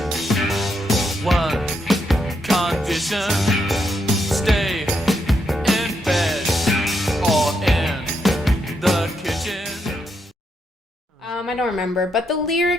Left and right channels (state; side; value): normal; both; correlation 0.80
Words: one condition: stay in bed or in the kitchen. I don't remember, but the